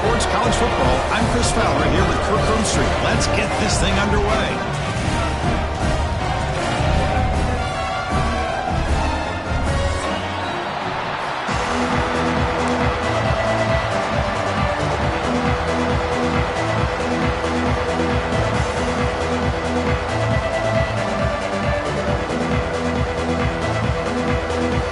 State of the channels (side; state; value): both; identical; correlation 1.00